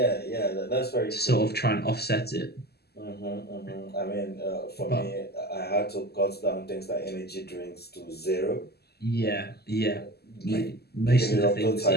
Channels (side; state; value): right; late; 0.46 ms